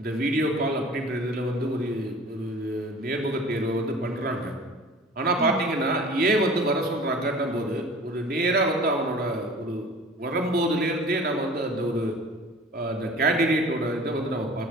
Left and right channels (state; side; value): normal; both; correlation 0.44